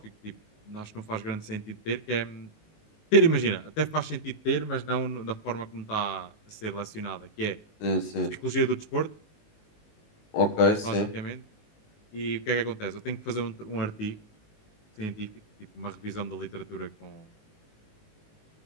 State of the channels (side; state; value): right; late; 19 ms